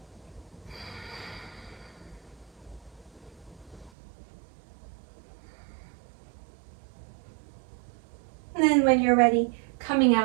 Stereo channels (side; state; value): left; drops out; at 3.9 s